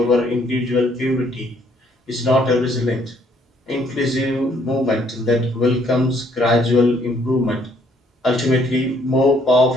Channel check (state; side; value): normal; both; correlation 0.66